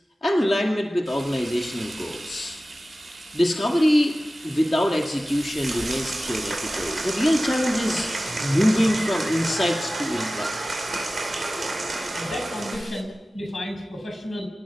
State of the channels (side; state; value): both; normal; correlation 0.96